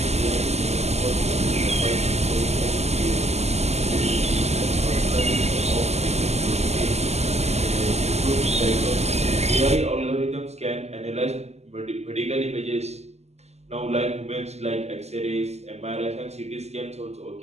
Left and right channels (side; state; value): left; late; 0.32 ms